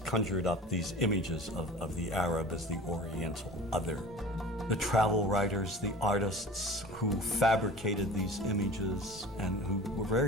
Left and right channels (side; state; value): both; normal; correlation 0.39